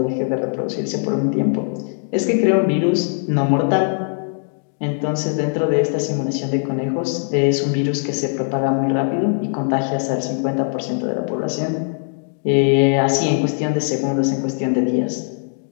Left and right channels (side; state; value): right; silent; 61 dB below the other